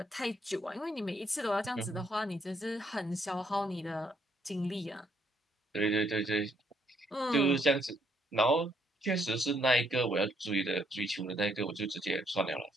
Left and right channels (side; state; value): both; normal; correlation 0.71